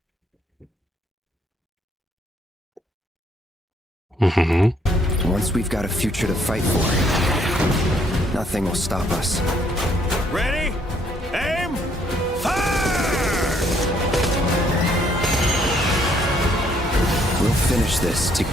Mm-hmm. Once we've got a future to fight for, nothing will stop us. Ready? Aim! Fire! We'll finish this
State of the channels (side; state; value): both; normal; correlation 0.67